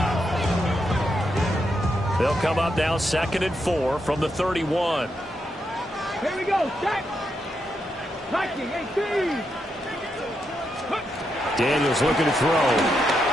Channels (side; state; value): both; normal; correlation 0.82